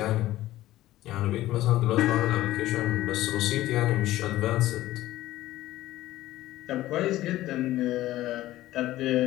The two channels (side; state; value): right; quieter; 15.5 dB